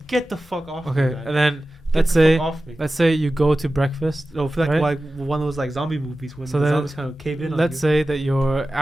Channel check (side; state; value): both; normal; correlation 0.95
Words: Get the fuck off me, Okay. guy. And then Get let's the say fuck off me. let's say you go to breakfast. No, I feel right? like one of those like zombie movies when So the then zombies kind of cave in on Let's you. say that you're